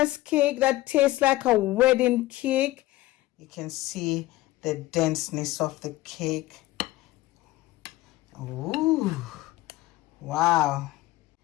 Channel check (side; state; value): right; quieter; 17.4 dB